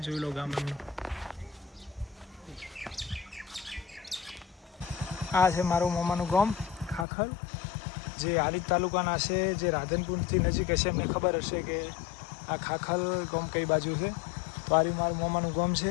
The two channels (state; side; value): drops out; right; at 7.1 s